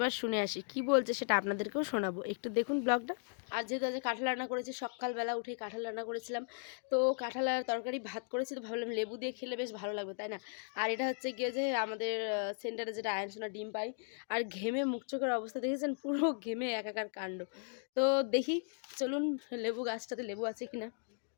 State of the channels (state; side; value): silent; right; 53 dB below the other